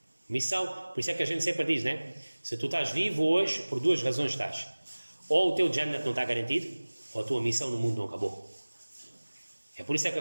Missão, por isso é que a gente sempre diz, né? Se tu estás vivo hoje, por duas razões estás. Ou o teu Jannat não está garantido, ou a tua missão no mundo não acabou. É por isso é que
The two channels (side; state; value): both; inverted; correlation -1.00